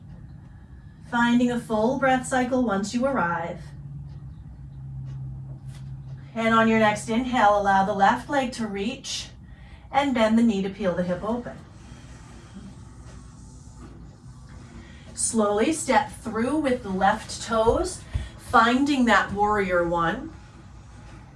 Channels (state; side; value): identical; both; correlation 1.00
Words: Finding a full breath cycle once you arrive. And on your next inhale, allow the left leg to reach and bend the knee to peel the hip open. Slowly step through with the left toes, finding that warrior one.